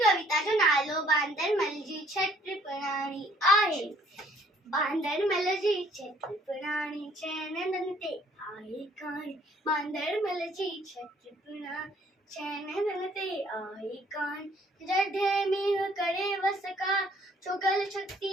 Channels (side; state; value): both; normal; correlation 0.61